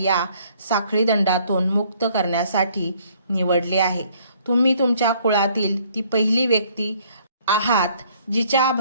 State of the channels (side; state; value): both; inverted; correlation -0.62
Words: साखळी दंडातून मुक्त करण्यासाठी निवडले आहे. तुम्ही तुमच्या कुळातील ती पहिली व्यक्ती आहात जिच्या